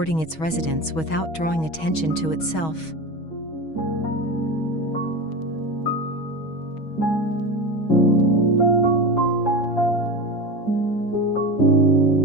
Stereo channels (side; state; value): right; late; 6.3 ms